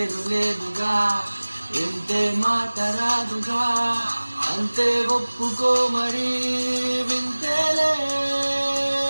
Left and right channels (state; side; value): inverted; both; correlation -1.00